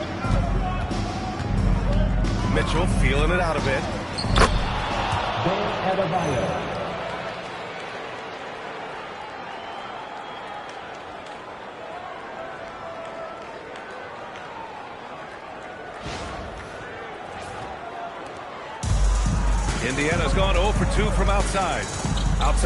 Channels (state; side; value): identical; both; correlation 1.00